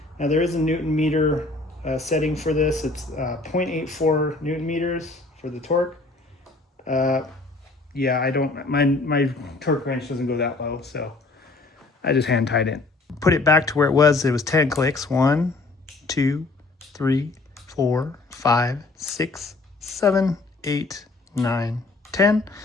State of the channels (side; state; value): right; quieter; 3.3 dB